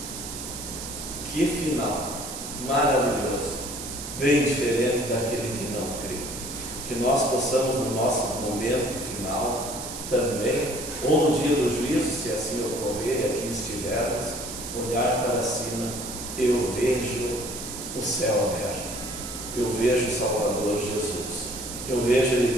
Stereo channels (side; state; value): right; noise; hiss, 8 dB below the sound